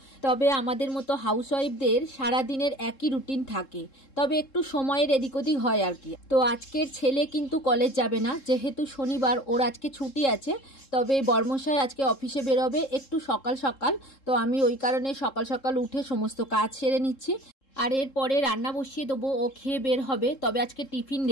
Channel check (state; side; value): late; right; 3.7 ms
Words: তবে আমাদের মতো হাউসওয়াইফদের সারাদিনের একই রুটিন থাকে, তবে একটু সময়ের এদিক ওদিক হয় আর কি। তো আজকের ছেলে কিন্তু কলেজ যাবে না, যেহেতু শনিবার ওর আজকে ছুটি আছে। তবে বর্মশাই আজকে অফিসে বেরোবে একটু সকাল সকাল, তো আমি ওই কারণে সকাল সকাল উঠে সমস্ত কাজ সেরে নিচ্ছি। আর এরপরে রান্না বসিয়ে দেবো, ও খেয়ে বের হবে। তবে আজকে টিফিন